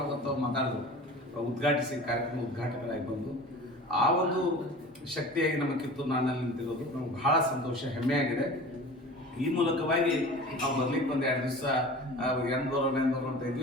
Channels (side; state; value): both; normal; correlation 0.38